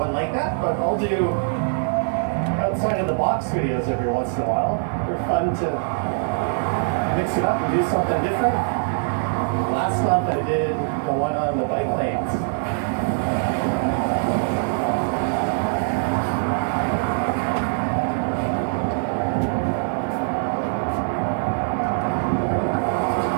like that, but I'll do outside of the box videos every once in a while. They're fun to mix it up and do something different. Last month I did the one on the bike lanes.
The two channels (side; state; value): left; silent; digital silence